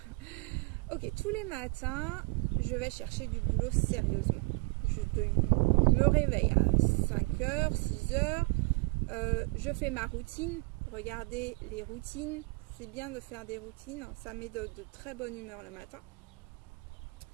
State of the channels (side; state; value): left; quieter; 29.9 dB